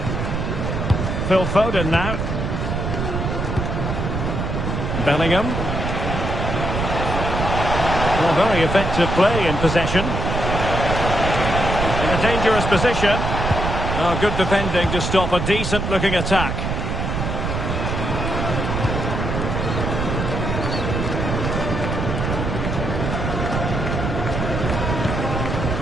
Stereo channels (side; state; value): right; noise; rumble, 2 dB below the sound